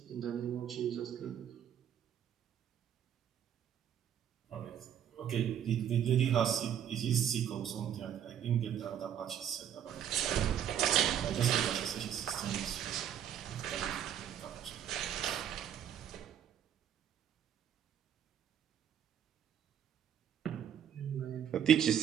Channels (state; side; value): quieter; left; 9.5 dB